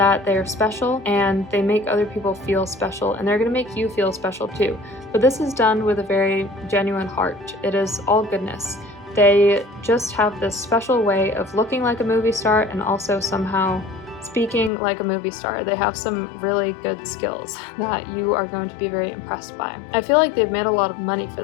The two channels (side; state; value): right; drops out; at 14.7 s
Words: they're special, and they make other people feel special, and they're going to make you feel special too. But this is done with a very genuine heart. It is all goodness. They just have this special way of looking like a movie star and also somehow speaking like a movie star. They have some really good skills that you are going to be very impressed by. I feel like they've made a lot of money for